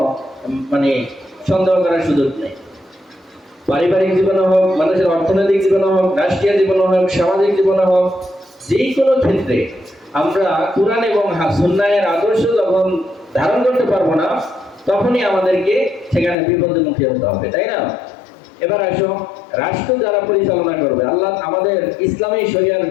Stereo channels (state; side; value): drops out; right; at 16.4 s